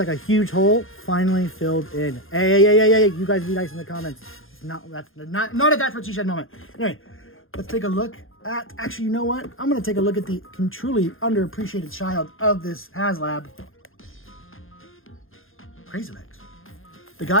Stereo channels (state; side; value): late; right; 0.60 ms